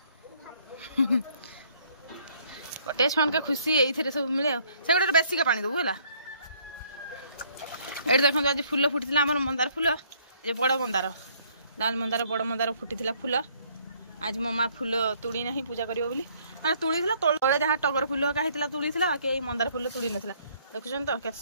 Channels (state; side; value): inverted; both; correlation -0.64